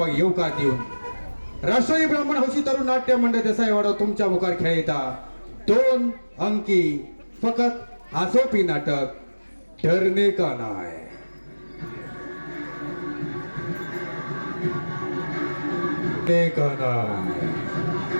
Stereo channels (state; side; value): inverted; both; correlation -1.00